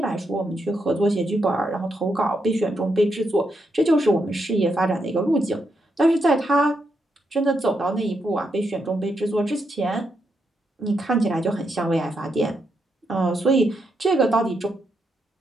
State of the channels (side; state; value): both; normal; correlation 0.81